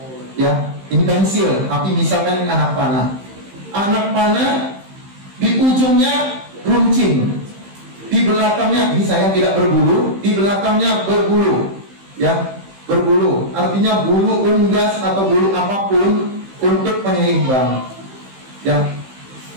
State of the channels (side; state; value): left; late; 15 ms